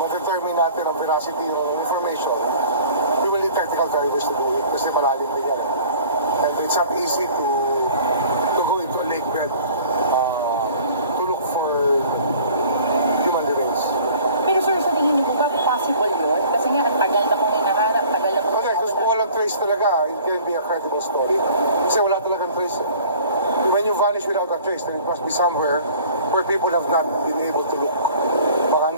Ma-determine natin ang veracity ng information. We will need technical divers to do it kasi malalim din yan. And it's not easy to go into a lake bed. Talaga, it can be a credible story. Kasi wala talagang trace. When you vanish without a trace, then it must be somewhere where people have not been able to look. Baka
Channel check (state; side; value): inverted; both; correlation -0.48